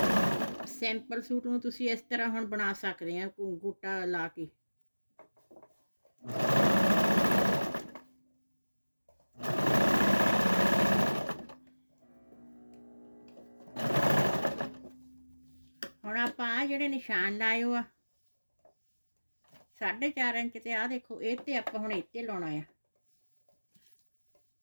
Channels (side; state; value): both; inverted; correlation -1.00